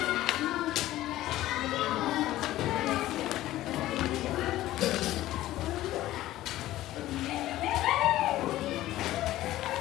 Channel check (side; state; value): right; quieter; 15.2 dB